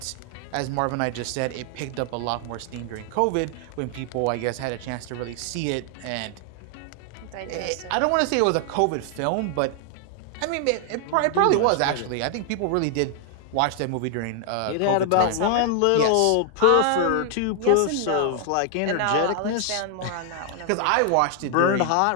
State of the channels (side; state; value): both; different; correlation 0.00